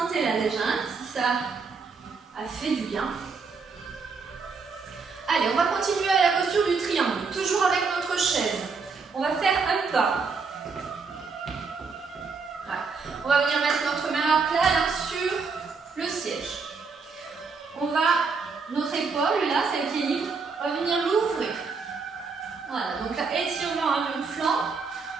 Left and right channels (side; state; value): left; quieter; 4.9 dB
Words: déjà, si ça a fait du bien. Allez, on va continuer à la posture du triangle, toujours avec notre chaise. On va faire un pas. On va venir mettre notre main à plat là, sur le siège. Notre épaule, là, celle qui est libre, va venir l'ouvrir. Voilà, donc là, étirement à mon flanc.